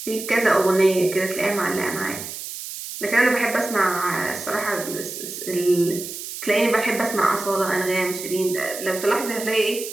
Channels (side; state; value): right; noise; hiss, 9 dB below the sound